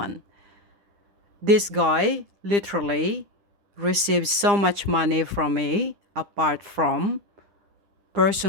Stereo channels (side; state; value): left; late; 9.9 ms